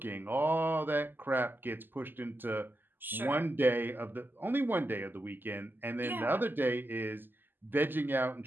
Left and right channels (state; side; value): late; left; 0.093 ms